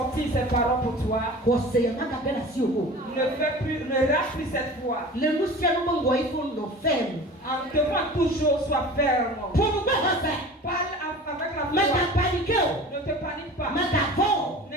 ces paroles pour toi, ne rate plus cette foi. En devant toujours sois ferme. Parle avec la foi. Ne te panique pas.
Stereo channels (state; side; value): normal; both; correlation 0.38